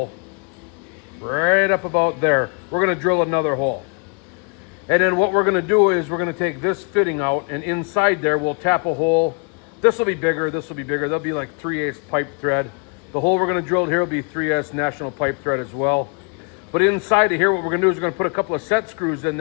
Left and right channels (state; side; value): quieter; right; 39.3 dB